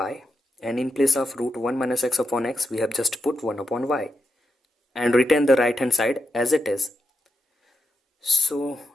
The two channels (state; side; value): normal; both; correlation 0.86